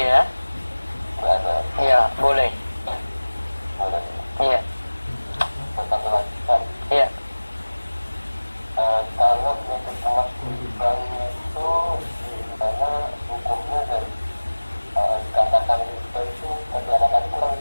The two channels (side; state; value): both; inverted; correlation -1.00